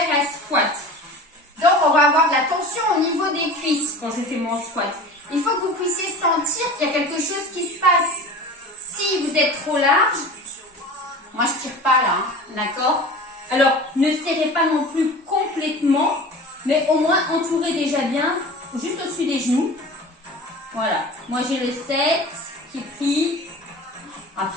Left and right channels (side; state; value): both; normal; correlation 0.37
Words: un squat. Donc, on va avoir de la tension au niveau des cuisses quand je fais mon squat. Il faut que vous puissiez sentir qu'il y a quelque chose qui se passe. Si vous êtes trop large, moi je tire pas là, hein, d'accord? Alors, ne serrez pas non plus complètement, mais au moins entourez déjà bien, juste au-dessus des genoux. Voilà, moi j'ai le 7 qui est pris.